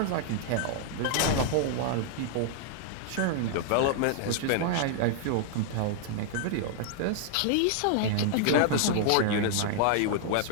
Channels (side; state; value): both; different; correlation -0.01